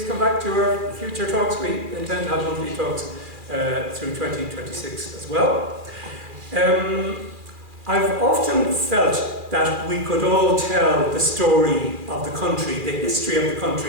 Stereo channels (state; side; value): late; left; 2.4 ms